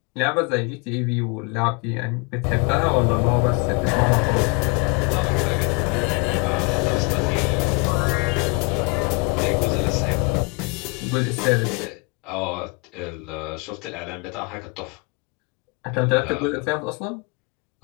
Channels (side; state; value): right; quieter; 31.5 dB